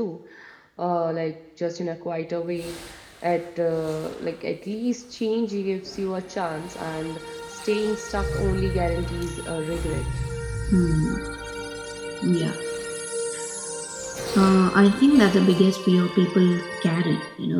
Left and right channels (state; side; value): identical; both; correlation 1.00